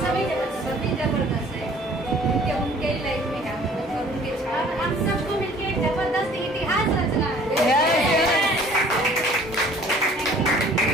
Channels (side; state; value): both; normal; correlation 0.53